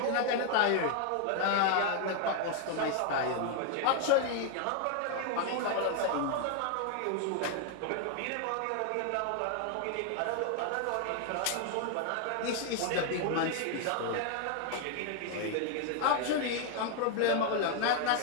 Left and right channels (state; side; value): different; both; correlation 0.00